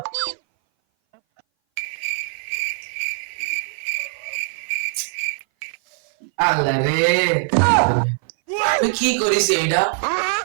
আল্লাহ রে, তুই কি করিস এইটা?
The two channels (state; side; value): silent; left; 59 dB below the other